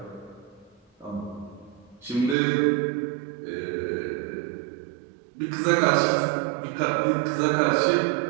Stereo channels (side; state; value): left; drops out; at 2.4 s